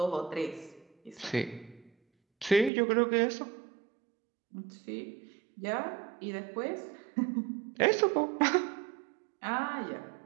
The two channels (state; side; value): drops out; left; at 2.7 s